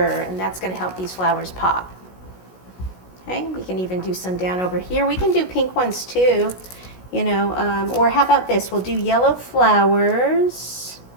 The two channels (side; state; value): right; late; 16 ms